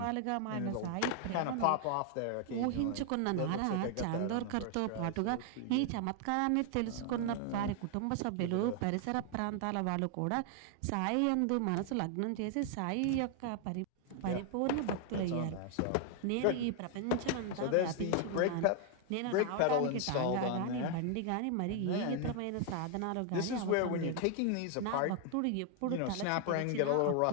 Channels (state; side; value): different; both; correlation 0.00